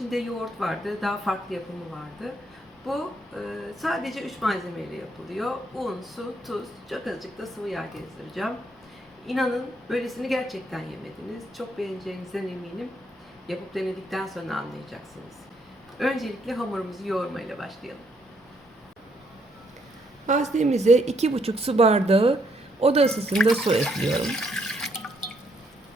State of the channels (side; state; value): both; normal; correlation 0.72